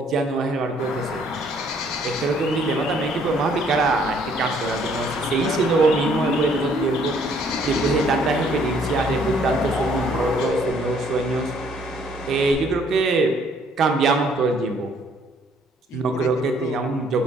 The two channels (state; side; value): normal; both; correlation 0.63